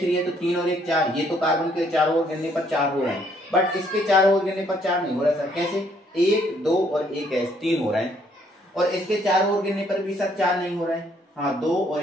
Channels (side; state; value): both; normal; correlation 0.67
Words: है तो 3 और 1 4, ये तो कार्बन के चारों ओर गिनने पर 4 हो रहे हैं, बट इसके चारों ओर गिनने पर 4 नहीं हो रहा सर। कैसे, 1 2 और 1 3 हो रहे हैं। और इसके 4 और गिनने पर भी सर 4 नहीं हो रहा है, हाँ 2 और